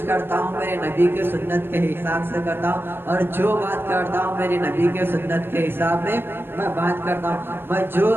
करता हूँ मेरे नबी के सुन्नत के हिसाब से करता हूँ, और जो बात करता हूँ मेरे नबी के सुन्नत के हिसाब में मैं बात करता हूँ। मैं जो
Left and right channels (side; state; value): left; late; 0.10 ms